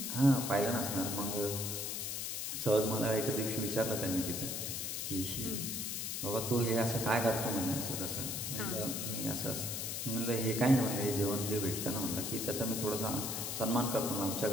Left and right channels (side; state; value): left; noise; hiss, 3 dB below the sound